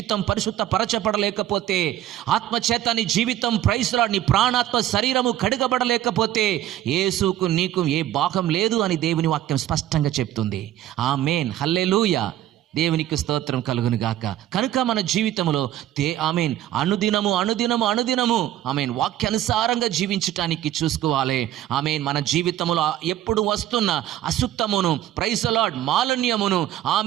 పరిశుద్ధ పరచబడలేకపోతే, ఆత్మ చేత నీ జీవితం ప్రైజ్ ది లార్డ్ నీ ప్రాణాత్మ శరీరము కడుగబడలేకపోతే యేసుకు నీకు ఏ భాగం లేదు అని దేవుని వాక్యం స్పష్టంగా చెప్తుంది. ఆమేన్. హల్లెలూయా. దేవునికి స్తోత్రం కలుగును గాక. కనుక మన జీవితంలో ఆమేన్ అనుదినము ఆమేన్ వాక్యానుసారంగా జీవించటానికి చూసుకోవాలి. ఆమేన్. మన జీవితంలో ఎప్పుడు వస్తున్న అశుద్ధమును, ప్రైజ్ ది లార్డ్ మాలిన్యమును,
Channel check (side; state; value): left; quieter; 12.8 dB